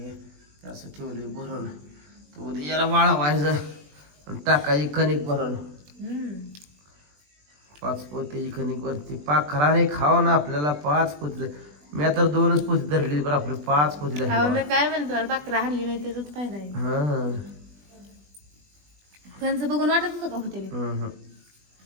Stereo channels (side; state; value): left; late; 20 ms